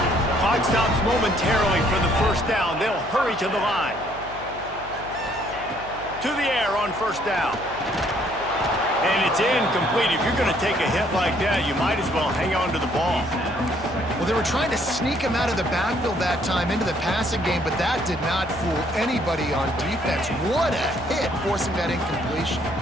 Clock stops momentarily for the first down. They'll hurry to the line. To the air on first down. And it's incomplete. If you're going to take a hit like that, you might as well hang on to the ball. Well, they were trying to sneak him out of the backfield that time into the passing game, but that did not fool anybody on defense. What a hit, forcing that incompletion.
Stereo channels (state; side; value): noise; left; hum, 17 dB below the sound